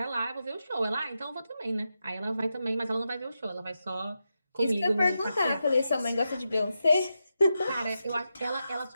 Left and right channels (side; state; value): both; inverted; correlation -0.88